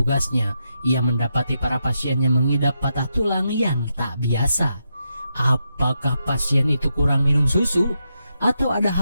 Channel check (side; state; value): both; inverted; correlation -0.84